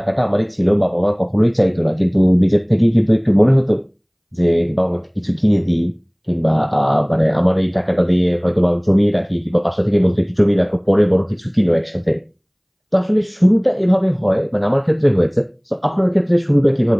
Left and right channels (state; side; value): identical; both; correlation 1.00